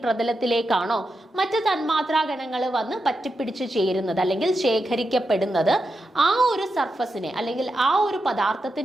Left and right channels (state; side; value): normal; both; correlation 0.87